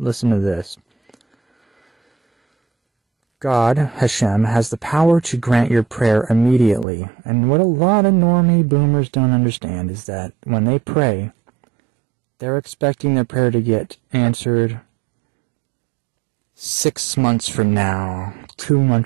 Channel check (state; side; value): drops out; left; at 6.9 s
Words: to this. God, Hashem, has the power to grant your prayer immediately. And what a lot of normie boomers don't understand is that when they pray, they're expecting their prayer to get answered 6 months from now, 2